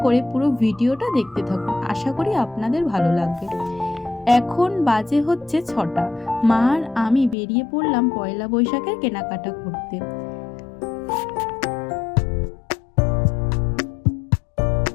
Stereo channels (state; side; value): drops out; right; at 7.4 s